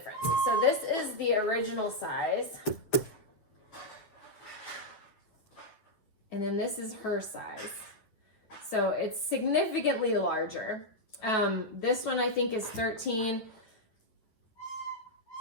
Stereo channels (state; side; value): late; right; 9.5 ms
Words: So this is the original size. And then this is her size. So it's significantly larger. This one I think is 13